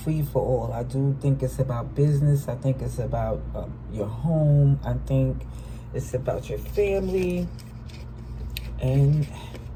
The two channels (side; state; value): both; identical; correlation 1.00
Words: I do think it's about business. I think it's about your home. I think it's about your family. And